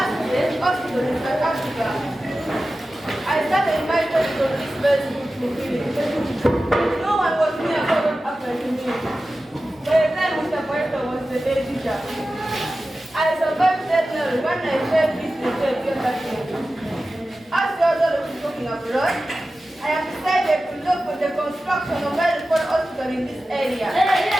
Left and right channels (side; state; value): both; normal; correlation 0.94